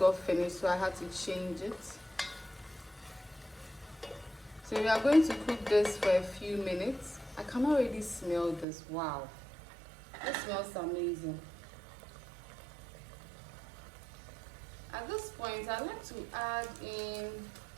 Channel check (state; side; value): drops out; left; at 8.7 s